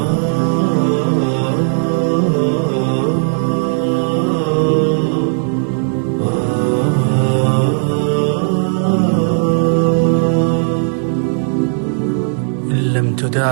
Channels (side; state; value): left; silent; digital silence